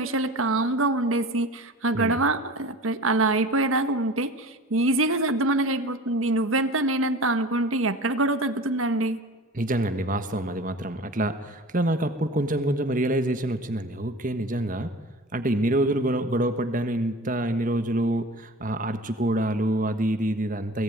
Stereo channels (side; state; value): both; normal; correlation 0.38